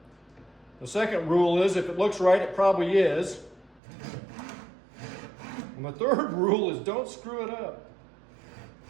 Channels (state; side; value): drops out; left; at 3.8 s